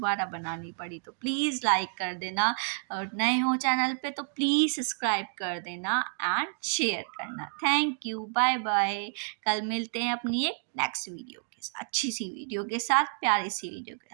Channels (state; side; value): silent; left; 58 dB below the other